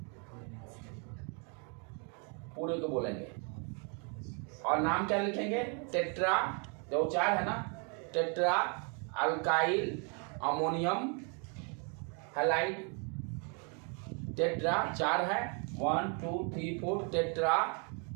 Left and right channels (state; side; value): quieter; left; 37.6 dB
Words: को बोलेंगे। और नाम क्या लिखेंगे, टेट्रा, जो 4 है ना, tetra alkyl ammonium halide, tetra 4 है, 1 2 3 4, टेट्रा